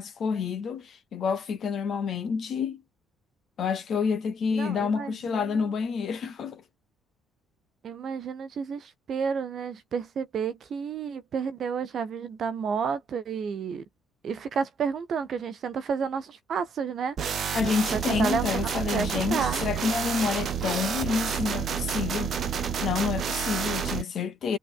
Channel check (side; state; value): both; normal; correlation 0.67